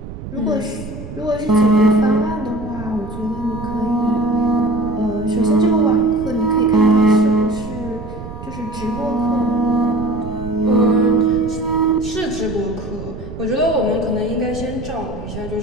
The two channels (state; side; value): noise; right; rumble, 11 dB below the sound